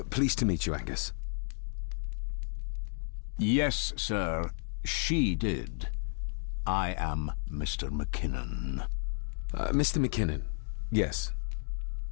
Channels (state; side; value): silent; right; 55 dB below the other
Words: Pleased to meet you, Angus. Yes, sir. She did. I am Mr. McKinnon. Mr. McKinnon. Yes.